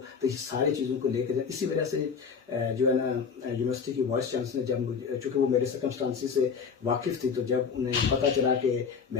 تو یہ ساری چیزوں کو لے کے جائیں. اسی وجہ سے جو ہے نا یونیورسٹی کی وائس چانسلر جب چونکہ وہ میرے سرکمسٹانسز سے واقف تھی، تو جب انہیں پتہ چلا کہ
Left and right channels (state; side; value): quieter; right; 5.9 dB